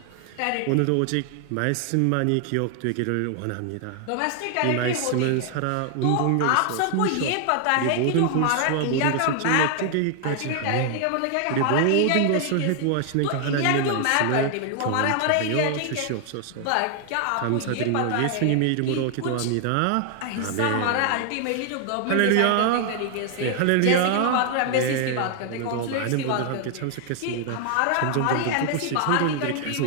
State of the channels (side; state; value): both; different; correlation 0.00